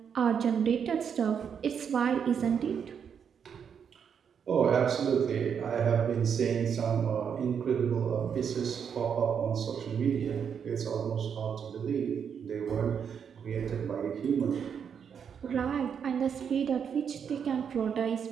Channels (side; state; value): left; quieter; 7.4 dB